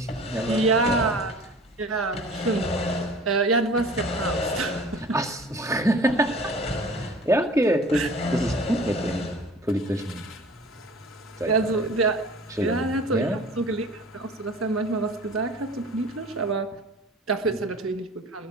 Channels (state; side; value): normal; both; correlation 0.44